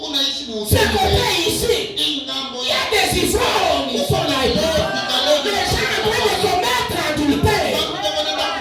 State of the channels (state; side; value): identical; both; correlation 1.00